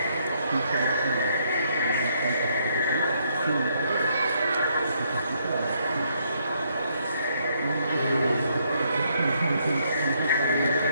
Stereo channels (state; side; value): inverted; both; correlation -0.72